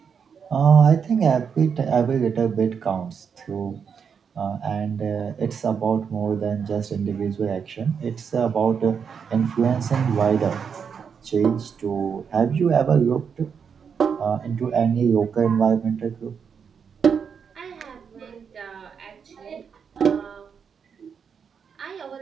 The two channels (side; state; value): left; quieter; 6.7 dB